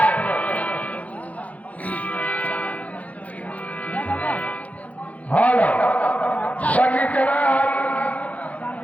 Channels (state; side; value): late; right; 0.069 ms